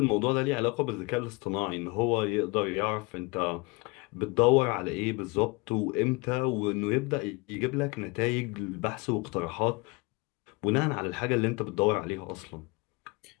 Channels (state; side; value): quieter; right; 27.2 dB